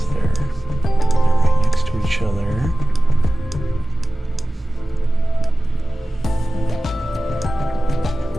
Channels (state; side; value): normal; both; correlation 0.97